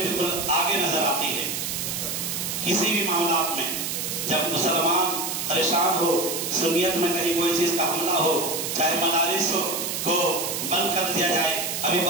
بالکل آگے نظر آتی ہے۔ کسی بھی معاملات میں جب مسلمان پریشان ہو، سنیت میں کہیں کوئی چیز کا حملہ ہو، چاہے مدارس کو بند کر دیا جائے، ابھی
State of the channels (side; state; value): right; noise; hiss, 3 dB below the sound